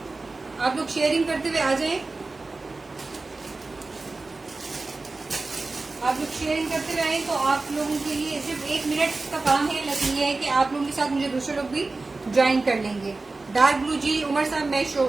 आप लोग शेयरिंग करते हुए आ जाएं। आप लोग शेयरिंग करते हुए आए तो आप लोगों के लिए सिर्फ 1 मिनट का काम है, लेकिन ये है कि आप लोगों के साथ मुझे दूसरे लोग भी ज्वाइन कर लेंगे। डार्क ब्लू जी उमर साहब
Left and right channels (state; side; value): quieter; left; 3.5 dB